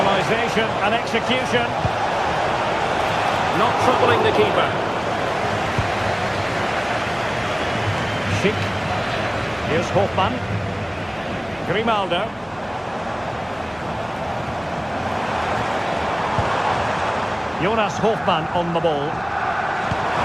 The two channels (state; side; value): noise; left; hum, 26 dB below the sound